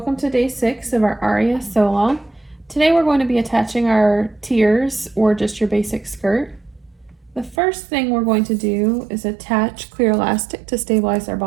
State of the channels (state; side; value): drops out; left; at 7.6 s